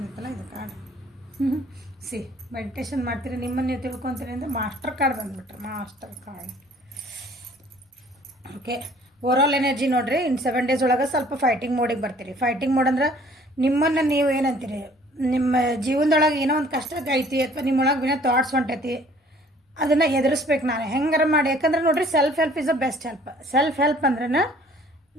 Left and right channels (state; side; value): normal; both; correlation 0.55